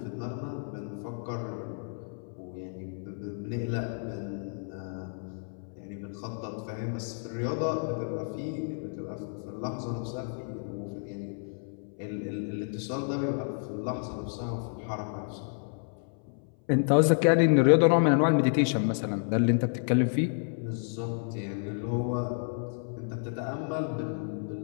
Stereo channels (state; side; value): silent; right; 57 dB below the other